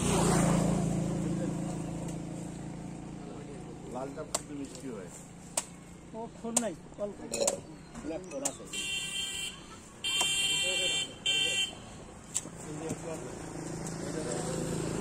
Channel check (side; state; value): both; identical; correlation 1.00